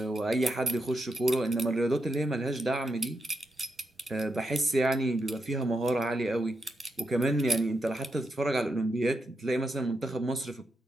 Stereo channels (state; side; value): normal; both; correlation 0.84